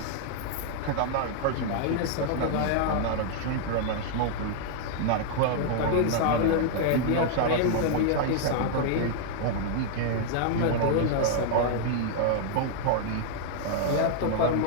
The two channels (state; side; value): different; both; correlation -0.01